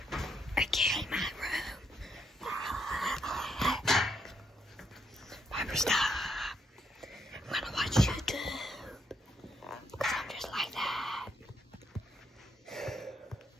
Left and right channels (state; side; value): normal; both; correlation 0.76